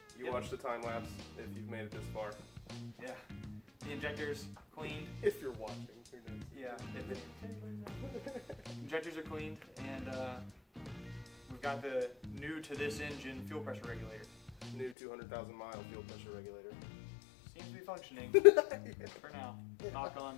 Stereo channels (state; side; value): drops out; right; at 15.0 s